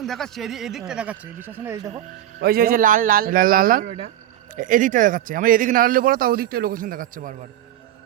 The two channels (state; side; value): quieter; left; 12.4 dB